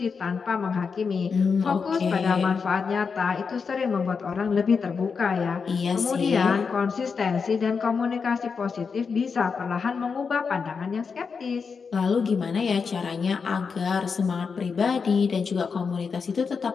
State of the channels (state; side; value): quieter; right; 5.5 dB